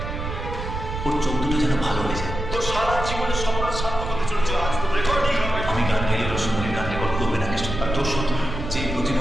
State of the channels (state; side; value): noise; right; rumble, 6 dB below the sound